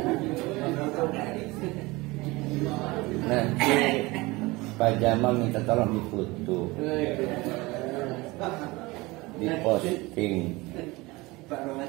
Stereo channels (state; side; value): quieter; left; 22.4 dB